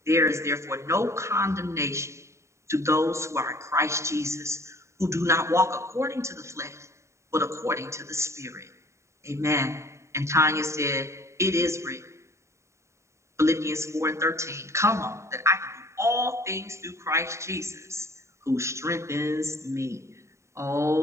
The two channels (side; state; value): left; late; 0.14 ms